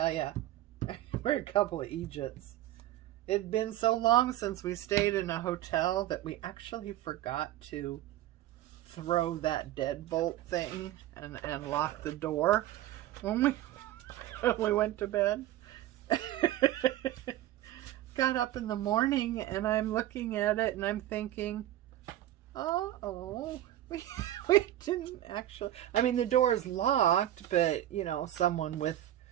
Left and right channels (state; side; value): quieter; left; 13.7 dB